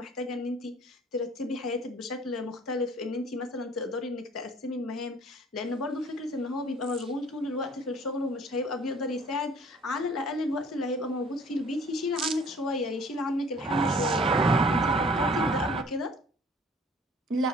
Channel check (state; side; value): normal; both; correlation 0.53